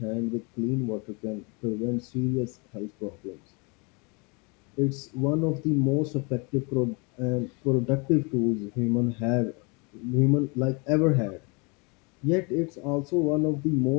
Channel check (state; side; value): quieter; right; 30.9 dB